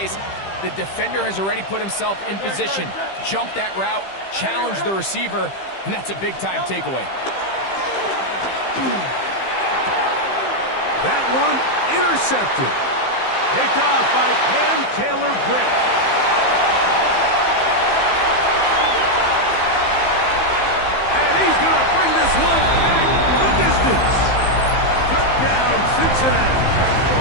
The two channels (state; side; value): late; right; 15 ms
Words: the defender has already put himself in position, jump that route, challenge the receiver, and that's a big-time takeaway. That one intercepted. Picked off by Cam Taylor-Britt. And he's going to bring this one back the distance. Touchdown, Cincinnati.